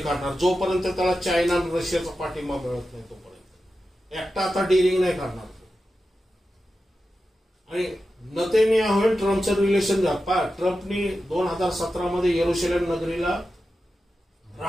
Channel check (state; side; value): normal; both; correlation 0.91